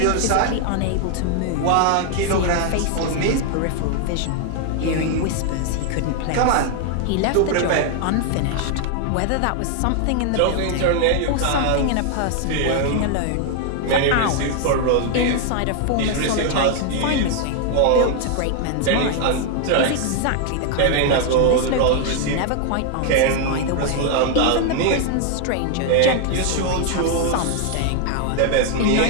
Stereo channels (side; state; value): both; different; correlation 0.00